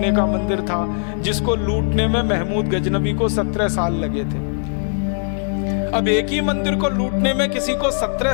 का मंदिर था जिसको लूटने में महमूद गजनवी को 17 साल लगे थे। अब एक ही मंदिर को लूटने में किसी को 17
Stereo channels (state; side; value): silent; right; digital silence